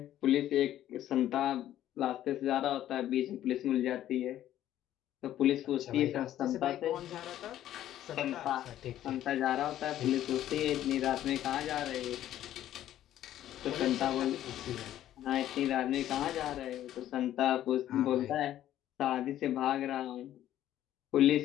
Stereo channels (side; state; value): right; quieter; 12.4 dB